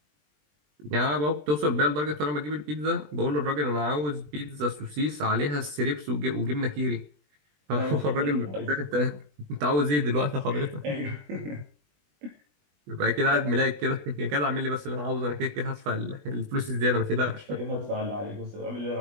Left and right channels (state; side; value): late; left; 20 ms